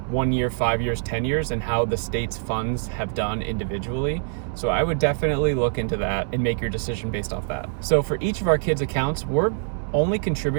1 year, 5 years, 10 years, and how the state's funds have done individually. So I would definitely look into that and make your decision based off that. So for each of our kids' accounts, we're only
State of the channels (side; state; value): left; silent; 61 dB below the other